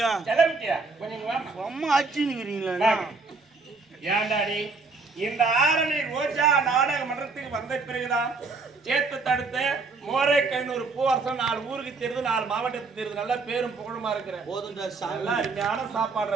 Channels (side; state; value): left; quieter; 4.1 dB